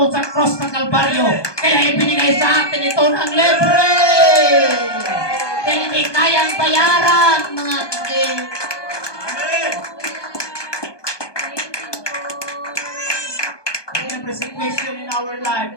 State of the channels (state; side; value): late; right; 1.2 ms